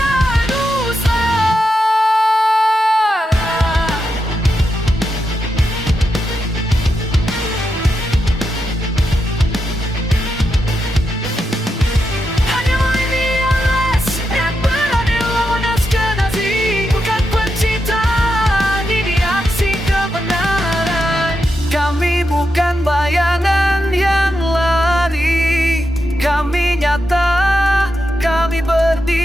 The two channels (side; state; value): both; normal; correlation 0.86